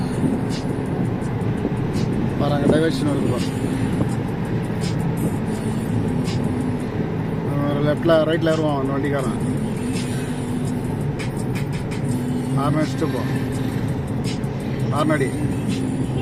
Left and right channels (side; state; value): both; identical; correlation 1.00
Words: பாருங்க, டைவர்ஷன் வருது. லெஃப்ட்ல ரைட்ல ஏறுவான் அந்த வண்டிக்காரன். ஆறு அடிச்சுட்டு போ. ஆறுநடி